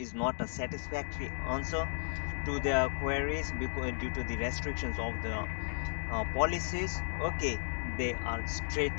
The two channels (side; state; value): right; silent; digital silence